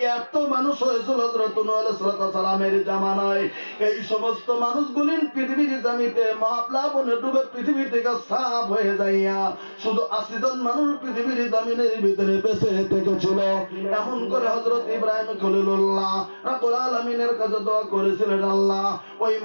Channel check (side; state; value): both; inverted; correlation -1.00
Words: এত মানুষ হয়েছিল হযরত নূহ আলাইহিস সালামের জামানায়। এই সমস্ত মানুষগুলি পৃথিবীর জমিতে মহাপ্লাবনে ডুবে পৃথিবী থেকে সাফ হয়ে যাইয়া শুধু ৮০ জন মানুষ পৃথিবীর জমিনের ভিতরে বেঁচে থেকেছিল। এমন করে হযরত ইব্রাহিম খলিলুল্লাহ রাব্বুল আলামিনের কাছে দোয়া করেছিলেন, আল্লাহ ওই